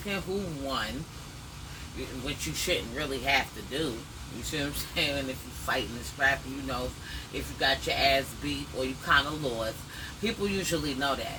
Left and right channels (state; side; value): identical; both; correlation 1.00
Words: who won, which you shouldn't really have to do. You see what I'm saying? If you fighting and scrapping, you know if you got your ass beat or you kind of lost. People usually know